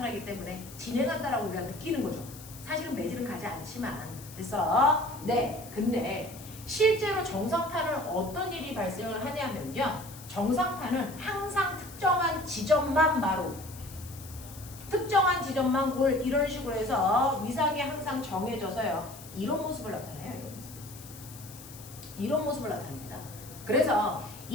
때문에 진행한다라고 우리가 느끼는 거죠. 사실은 매질은 가지 않지만 근데 실제로 정상파는 어떤 일이 발생을 하냐면요. 정상파는 항상 특정한 지점만 마루 특정한 지점만 골 이런 식으로 해서 위상이 항상 정해져서요. 이런 모습을 나타내요. 이런 모습을 나타냅니다. 그래서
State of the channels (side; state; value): left; noise; hiss, 17 dB below the sound